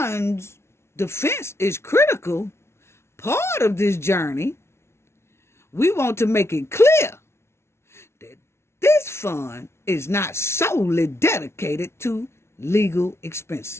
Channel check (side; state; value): right; late; 0.13 ms